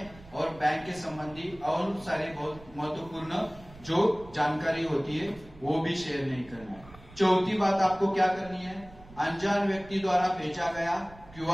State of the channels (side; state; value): right; noise; rumble, 21 dB below the sound